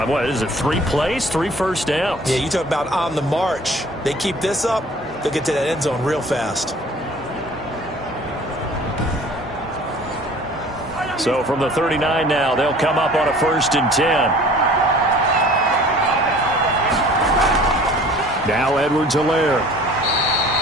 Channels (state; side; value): normal; both; correlation 0.49